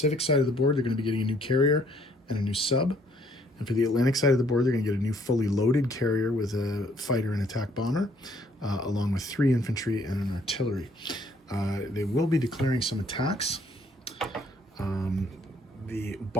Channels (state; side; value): normal; both; correlation 0.64